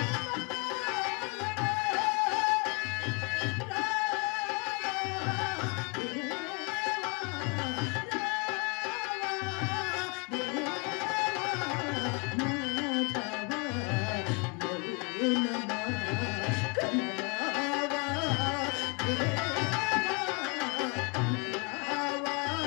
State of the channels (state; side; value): quieter; right; 31.4 dB